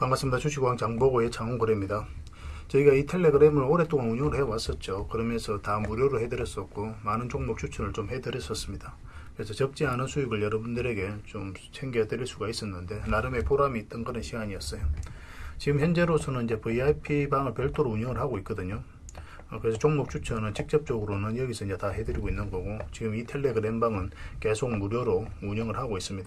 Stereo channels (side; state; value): both; identical; correlation 1.00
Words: 주식왕 장보고의 장훈거래입니다. 저희가 이 텔레그램을 오랫동안 운영을 해왔었죠. 그러면서 다 무료로 해드렸었고 많은 종목 추천을 좀 해드렸었습니다. 그래서 적지 않은 수익을 여러분들에게 좀 챙겨드릴 수가 있었는데 나름의 보람이 있던 그런 시간이었어요. 지금 현재로서는 이제 VIP 방을 별도로 운영을 하고 있거든요. 그래서 종목 추천은 직접적으로는 여기서 이제 다 해드리고 있는 거고, 지금 이 텔레그램 방은 계속 무료로 운영을 하고